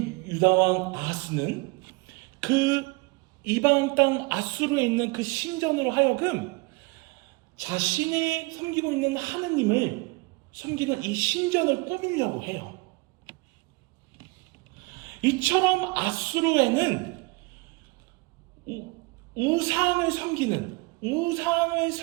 유다왕 아하스는 그 이방 땅 아수르에 있는 그 신전으로 하여금 자신이 섬기고 있는 하느님을 섬기는 이 신전을 꾸미려고 해요. 이처럼 아수르에는 우상을 섬기는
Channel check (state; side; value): quieter; left; 25.9 dB